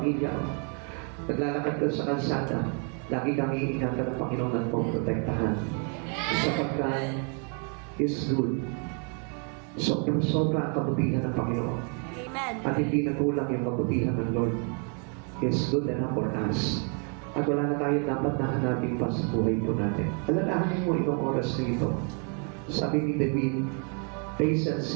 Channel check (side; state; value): left; quieter; 40.0 dB